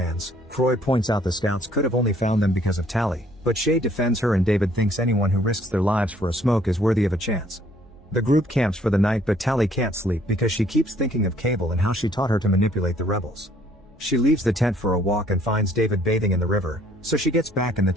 Croy points out the scouts could have only found them because of Tally, but Shay defends her and David thinks anyone who risks their lives for a smoke is worthy of a chance. The group camps for the night, but Tally can't sleep because she keeps thinking of Cable and how she taught her to manipulate the rebels. She leaves the tent for a walk and finds David bathing in the river, so she gets back in the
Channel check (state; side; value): normal; both; correlation 0.62